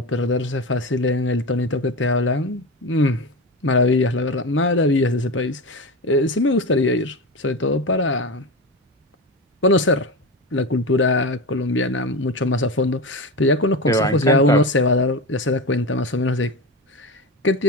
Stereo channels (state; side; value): normal; both; correlation 0.22